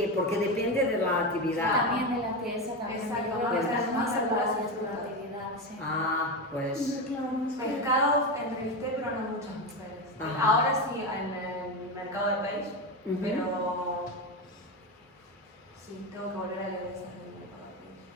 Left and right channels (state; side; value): normal; both; correlation 0.16